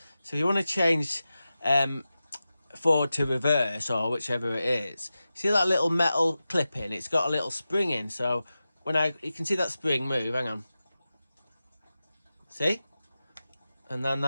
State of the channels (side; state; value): both; inverted; correlation -0.94